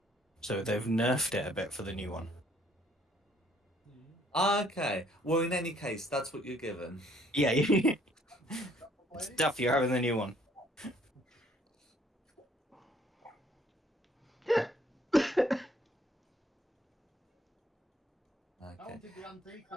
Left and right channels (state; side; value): normal; both; correlation 0.63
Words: So they've nerfed it a bit for the new one. Okay. Well, in any case, that's what you're given. Yeah, stuff. You're having the new one. I Okay. wanted the antique